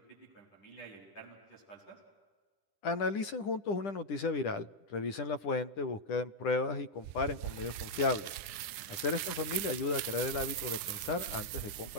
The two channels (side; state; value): right; late; 10 ms